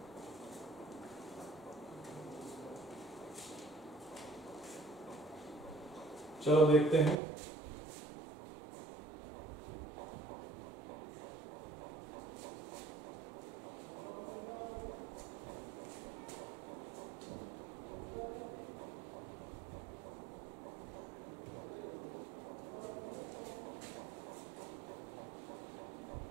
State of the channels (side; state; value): left; drops out; at 7.2 s